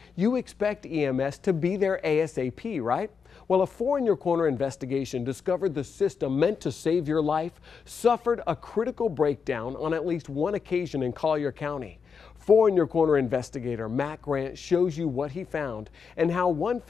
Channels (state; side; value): quieter; right; 5.9 dB